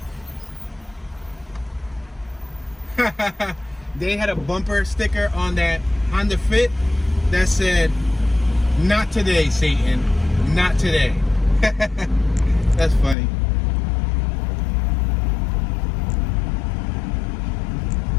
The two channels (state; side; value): drops out; right; at 13.2 s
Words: They had a bumper sticker on that Honda Fit that said, "Not today, Satan, not today." That's funny.